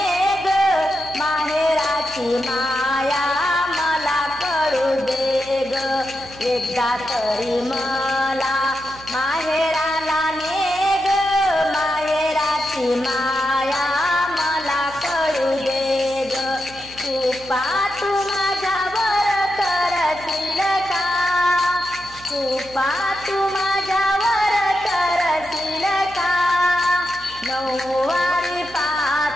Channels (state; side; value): noise; right; hum, 20 dB below the sound